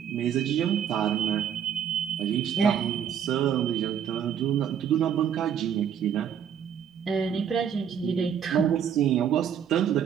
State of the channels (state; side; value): quieter; left; 8.6 dB